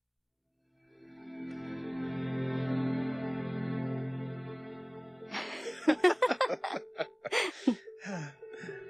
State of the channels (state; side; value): identical; both; correlation 1.00